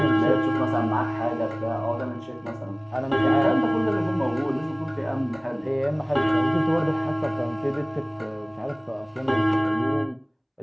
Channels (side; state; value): both; identical; correlation 1.00